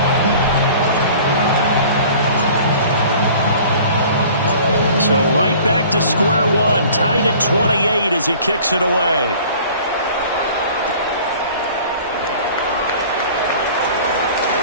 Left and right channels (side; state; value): both; inverted; correlation -0.47